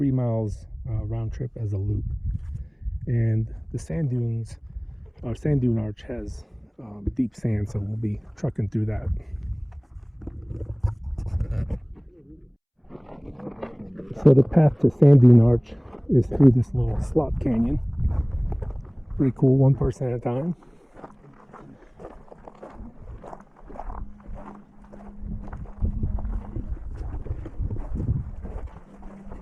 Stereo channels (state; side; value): identical; both; correlation 1.00